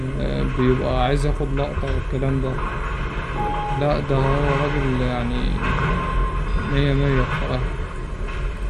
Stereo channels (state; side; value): identical; both; correlation 1.00